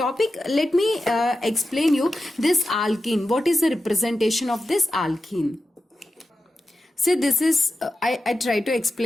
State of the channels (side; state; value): both; normal; correlation 0.91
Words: let me explain you this alkene. What is the representation of this alkene? See, this is, I try to